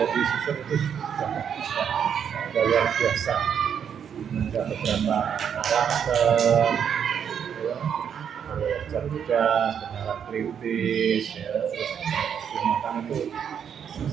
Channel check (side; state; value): left; quieter; 8.0 dB